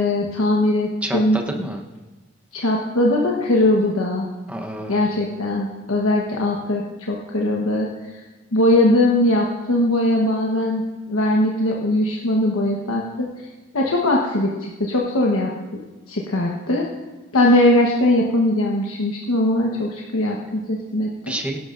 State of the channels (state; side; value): normal; both; correlation 0.36